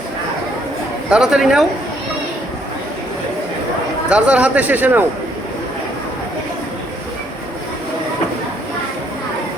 তাড়াতাড়ি নাও, যার যার হাতে শেষে নাও।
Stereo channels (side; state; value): both; normal; correlation 0.68